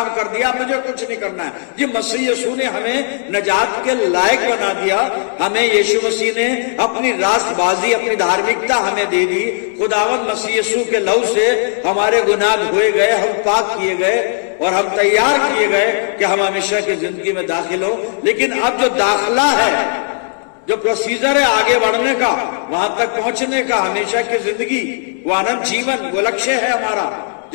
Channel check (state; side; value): silent; right; digital silence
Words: कर दिया, मुझे कुछ नहीं करना है। जी, मसीह यीशु ने हमें नजात के लायक बना दिया। हमें यीशु मसीह ने अपनी रास्तबाजी, अपनी धार्मिकता हमें दे दी। खुदावंद मसीह यीशु के लहू से हमारे गुनाह धोए गए, हम पाक किए गए और हम तैयार किए गए कि हम हमेशा की जिंदगी में दाखिल हो। लेकिन अब जो दाखिला है, जो प्रोसीजर है आगे बढ़ने का, वहां तक पहुंचने का, हमेशा की जिंदगी, वो अनंत जीवन, वो लक्ष्य है हमारा,